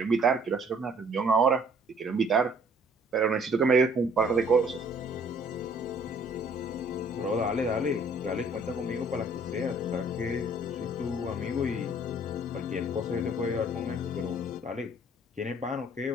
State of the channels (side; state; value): both; normal; correlation 0.58